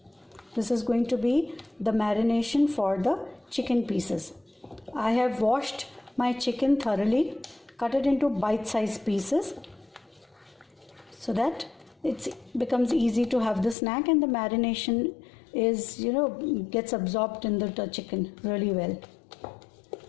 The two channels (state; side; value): drops out; right; at 13.8 s